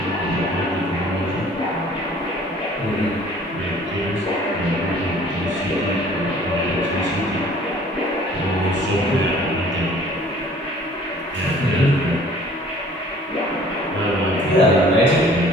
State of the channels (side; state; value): both; normal; correlation 0.52